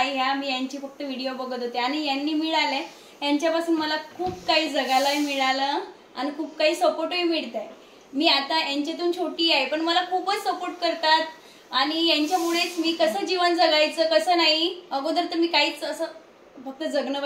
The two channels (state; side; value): identical; both; correlation 1.00